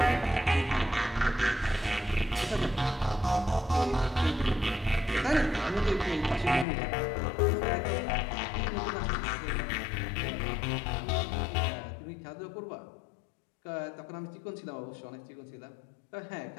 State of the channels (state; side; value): drops out; right; at 6.7 s